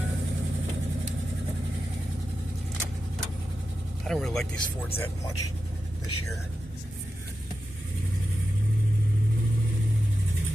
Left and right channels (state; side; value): normal; both; correlation 0.91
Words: I don't really like these Fords that much this year.